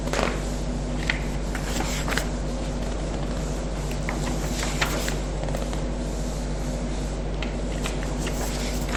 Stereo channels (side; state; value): both; identical; correlation 1.00